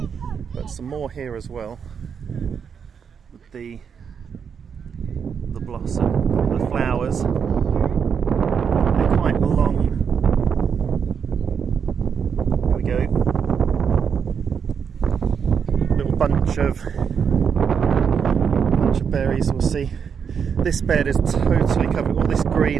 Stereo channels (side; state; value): left; quieter; 6.9 dB